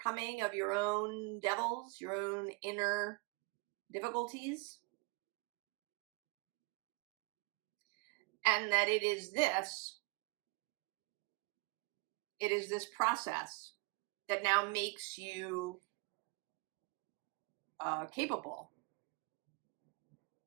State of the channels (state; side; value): quieter; left; 28.4 dB